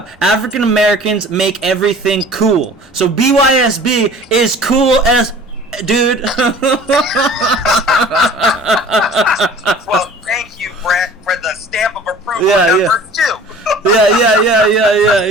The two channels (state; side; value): normal; both; correlation 0.46